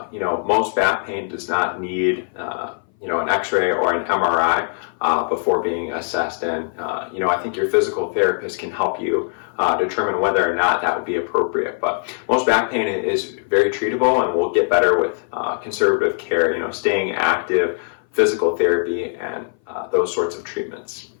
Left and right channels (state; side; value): silent; right; 59 dB below the other